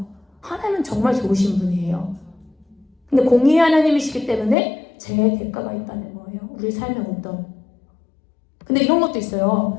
하나님은 정말 좋으신 분이에요. 근데 공의의 하나님이시기 때문에 죄의 대가가 있다는 거예요. 우리 삶에 근데 이런 것도 있어요.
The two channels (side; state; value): right; drops out; at 4.5 s